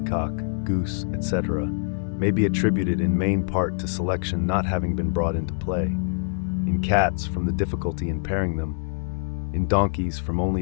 goose, etc., may be attributed in main part to selection not having been brought into play. In cats, from the difficulty in pairing them. In donkeys, from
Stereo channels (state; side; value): silent; right; digital silence